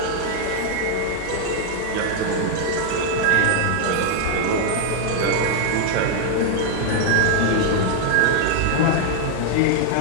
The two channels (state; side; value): different; both; correlation 0.00